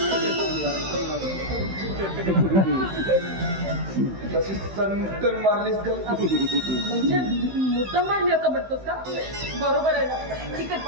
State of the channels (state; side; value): late; left; 15 ms